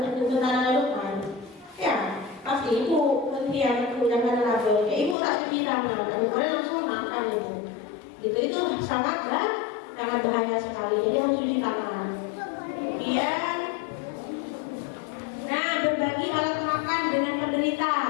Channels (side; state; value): right; drops out; at 5.2 s